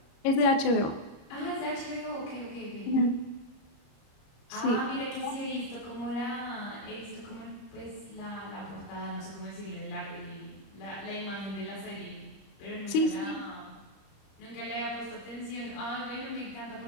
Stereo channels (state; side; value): late; right; 26 ms